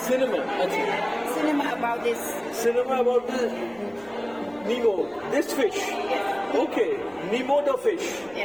Cinema. আচ্ছা, Cinema about this. cinema about the Nemo, this fish. Okay, Nemo the fish.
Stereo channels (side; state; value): left; noise; rumble, 28 dB below the sound